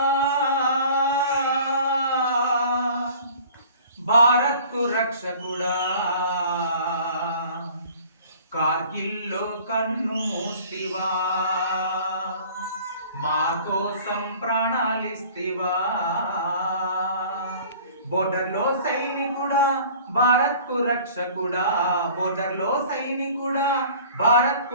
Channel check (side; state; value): both; inverted; correlation -0.48